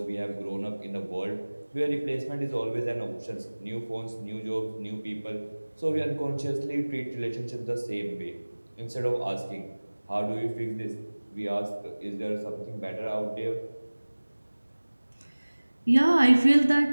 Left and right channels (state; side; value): inverted; both; correlation -1.00